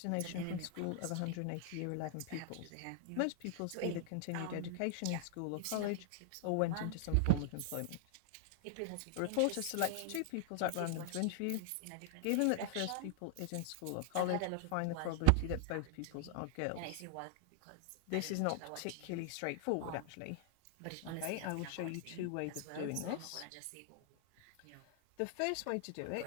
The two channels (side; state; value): both; different; correlation 0.00